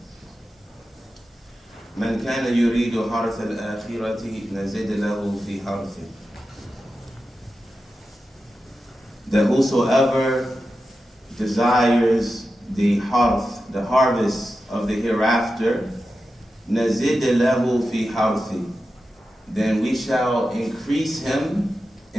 من كان يريد حرث الآخرة نزد له في حرثه. That whosoever desires the harvest of the hereafter, نزد له في حرثه, then we shall increase him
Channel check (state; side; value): normal; both; correlation 0.91